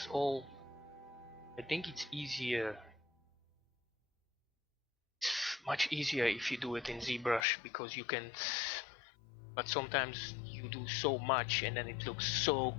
all. I think it's easier, it's much easier if you do it in ZBrush, because you can, but sometimes you do so much and then it looks so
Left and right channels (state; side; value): drops out; right; at 7.5 s